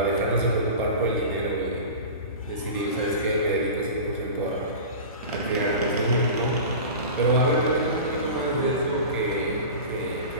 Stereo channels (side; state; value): both; inverted; correlation -0.32